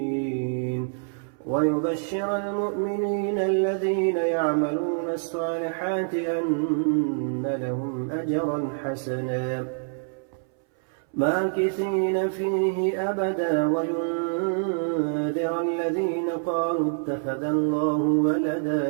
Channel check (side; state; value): left; silent; 61 dB below the other